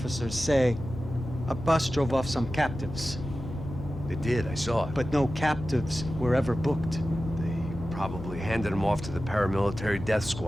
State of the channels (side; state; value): left; noise; hum, 12 dB below the sound